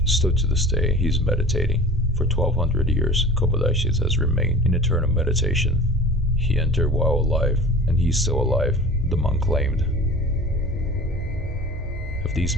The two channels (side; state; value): both; normal; correlation 0.40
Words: Still to this day, he is meditating. For 1200 years, Kobodaishi has remained in eternal meditation. He entered while alive, and he is still alive," the monk claimed. Have these